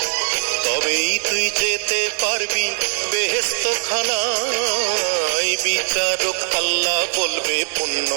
তবেই তুই যেতে পারবি বেহেশত খানায়। বিচারক আল্লাহ বলবে পুণ্য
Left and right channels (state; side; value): silent; left; 66 dB below the other